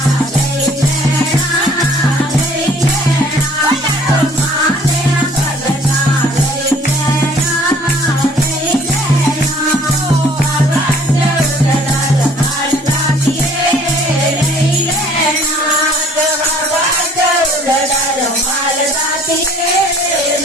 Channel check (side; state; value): both; normal; correlation 0.55